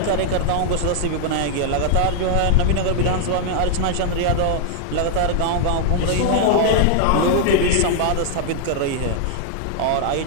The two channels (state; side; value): different; both; correlation -0.01